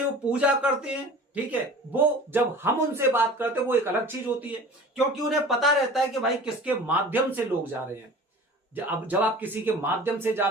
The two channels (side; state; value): both; normal; correlation 0.41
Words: वो पूजा करते हैं, ठीक है, वो जब हम उनसे बात करते हैं वो एक अलग चीज होती है। क्योंकि उन्हें पता रहता है कि भाई किसके माध्यम से लोग जा रहे हैं। जब आप किसी के माध्यम से